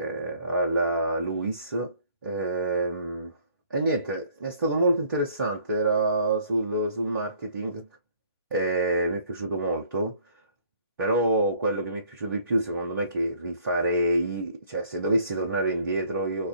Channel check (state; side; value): inverted; both; correlation -0.58